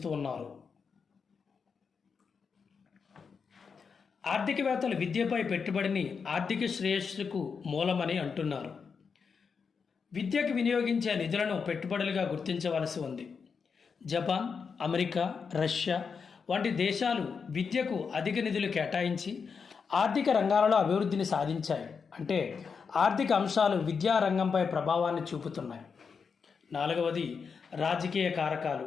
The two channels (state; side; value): quieter; right; 5.8 dB